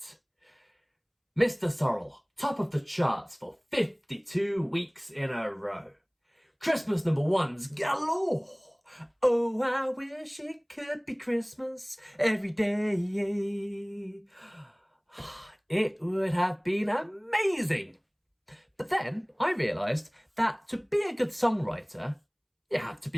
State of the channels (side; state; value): both; identical; correlation 1.00